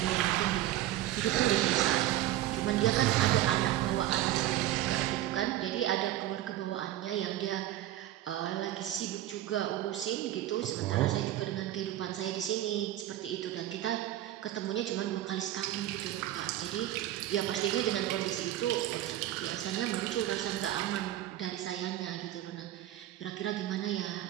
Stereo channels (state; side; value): quieter; left; 13.7 dB